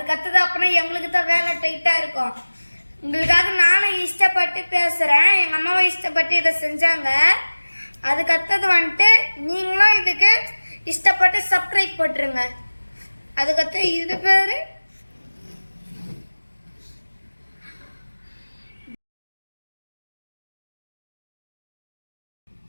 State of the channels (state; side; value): inverted; both; correlation -1.00